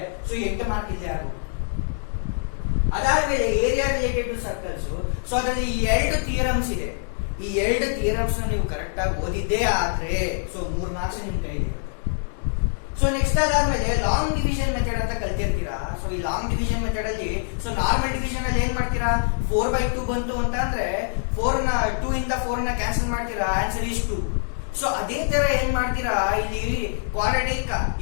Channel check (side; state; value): right; silent; digital silence